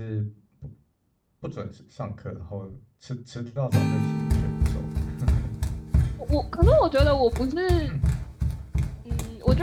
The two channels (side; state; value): both; identical; correlation 1.00